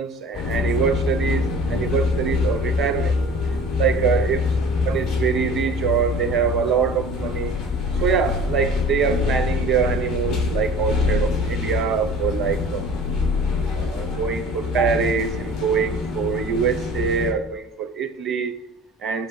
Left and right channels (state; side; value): normal; both; correlation 0.44